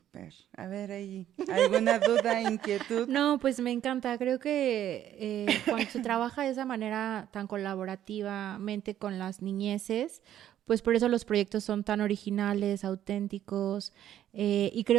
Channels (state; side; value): quieter; left; 11.4 dB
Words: A ver, ahí, ¿alguna duda, inquietud? No, pues me encanta. Creo que cuando se trabaja de esa manera tan colaborativamente con las niñeces, pues por eso los proyectos son tan originales, auténticos, y